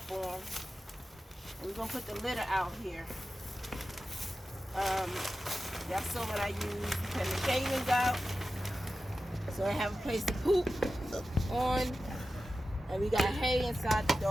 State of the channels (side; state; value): both; normal; correlation 0.93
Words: We're gonna put the litter out here. That's what I use. Put the shavings out, so I have a place to poop on, and we got hay inside the